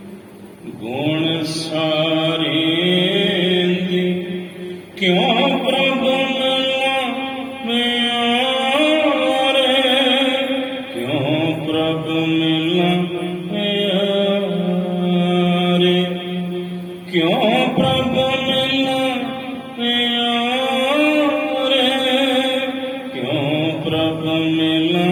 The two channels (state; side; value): identical; both; correlation 1.00